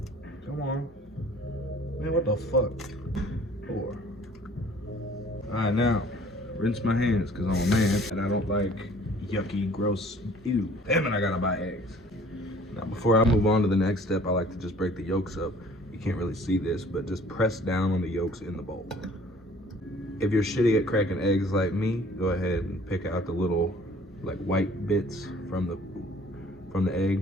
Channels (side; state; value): both; normal; correlation 0.53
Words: Come on. Man, what the fuck? 4. Alright, now, rinse my hands, because I'm a man, and I don't like yucky, gross, ew. Damn it, I gotta buy eggs. Now, before I move on to the next step, I like to just break the yolks up. You can't really see this, but just press down on the yolks in the bowl. If you're shitty at cracking eggs like me, go ahead and pick out the little like white bits from the